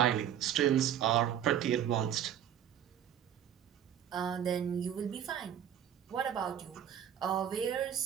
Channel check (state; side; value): quieter; left; 9.8 dB